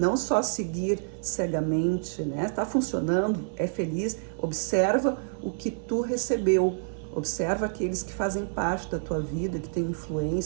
só seguir cegamente, né? Tá funcionando, é feliz, observa o que tu recebeu. Observa aqueles que fazem parte da tua vida, que têm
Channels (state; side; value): silent; left; 59 dB below the other